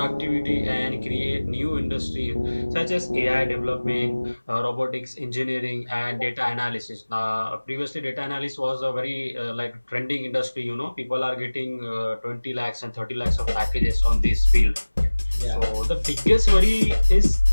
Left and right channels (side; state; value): both; inverted; correlation -1.00